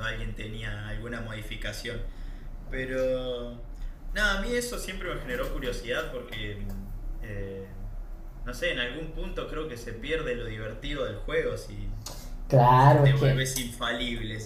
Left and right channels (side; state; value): both; identical; correlation 1.00